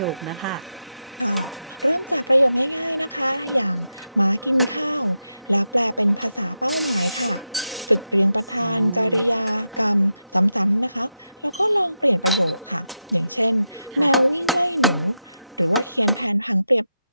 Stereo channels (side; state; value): both; inverted; correlation -0.88